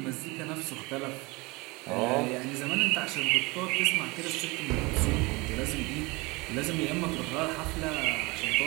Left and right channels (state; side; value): quieter; left; 24.7 dB